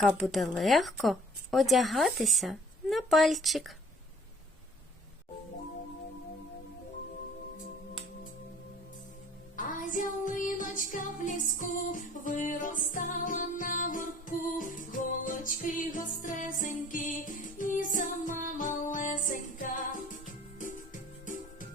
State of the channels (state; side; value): normal; both; correlation 0.52